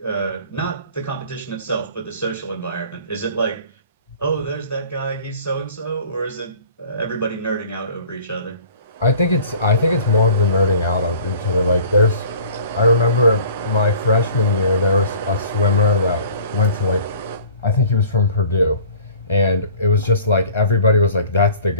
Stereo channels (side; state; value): both; inverted; correlation -0.48